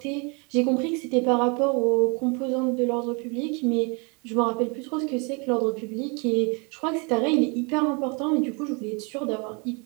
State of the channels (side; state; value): left; quieter; 32.1 dB